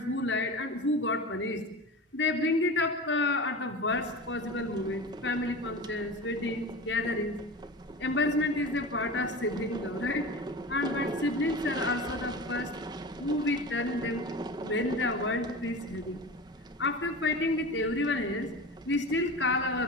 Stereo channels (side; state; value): both; normal; correlation 0.31